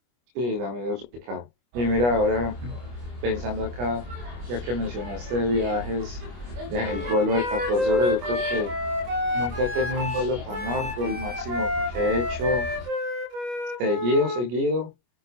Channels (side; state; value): left; late; 25 ms